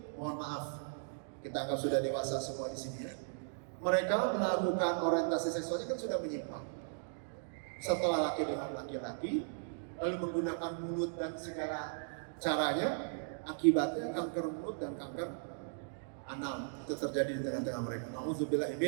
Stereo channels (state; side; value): silent; left; digital silence